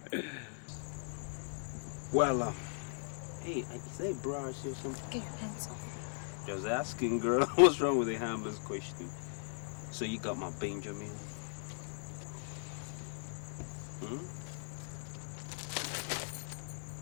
Well, hey, is that a brush or something? Get your hands off. Just asking, girl. What's wrong with a harmless question? So you got my Benjamin?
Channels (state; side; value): silent; right; digital silence